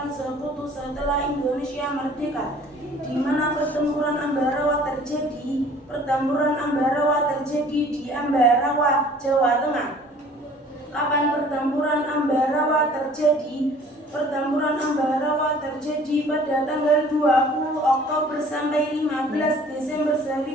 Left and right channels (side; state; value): both; normal; correlation 0.52